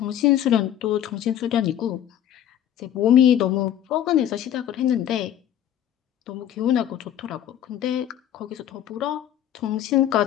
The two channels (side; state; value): right; quieter; 10.9 dB